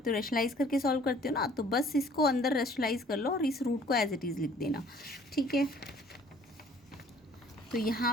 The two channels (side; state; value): both; normal; correlation 0.55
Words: हो, रेशनलाइज करके सॉल्व करते हो ना। तो बस इसको अंदर रेशनलाइज कर लो और इस रूट को एज इट इज़ लिख देना। ठीक है, तो